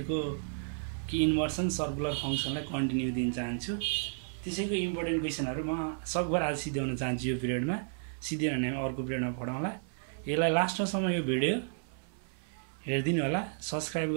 कि इन्भर्सन सर्कुलर फङ्सनलाई कन्टिन्यू दिन चाहन्छु। त्यसैको इम्पोर्टेन्ट क्वेसनहरू म सकभर आज सिध्याउन चाहन्छु। यो पिरियडमा सिधै भने अर्को पिरियडमा पढाउँला। यसलाई लास्टसम्म यो भिडियो हेरिदिनु होला, सब्सक्राइब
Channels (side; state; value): left; silent; 56 dB below the other